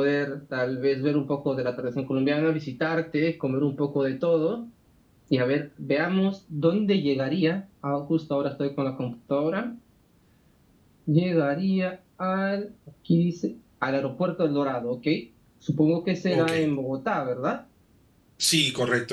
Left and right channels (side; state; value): both; identical; correlation 1.00